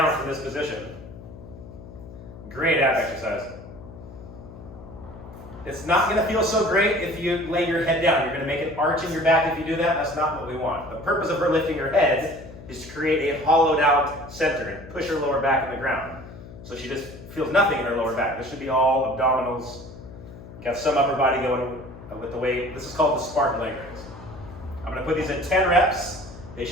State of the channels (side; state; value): left; noise; hum, 16 dB below the sound